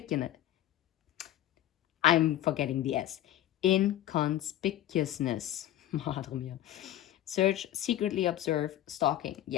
I'm forgetting the S. Inconspicuousness. Madre mia. Search, secretly observe, stalking.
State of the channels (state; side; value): quieter; right; 13.0 dB